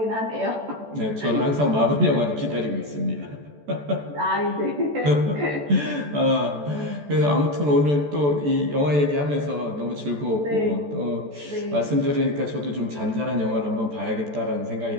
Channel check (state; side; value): late; left; 14 ms